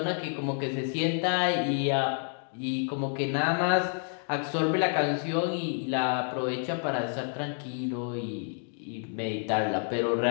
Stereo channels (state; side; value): silent; right; 58 dB below the other